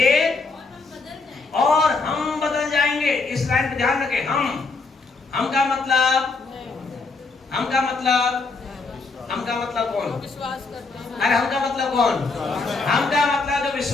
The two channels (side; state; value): right; quieter; 4.0 dB